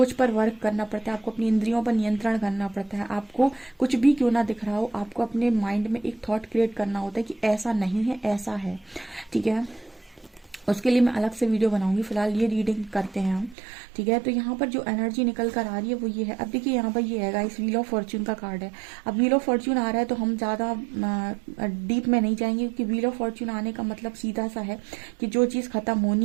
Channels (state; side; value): drops out; left; at 13.6 s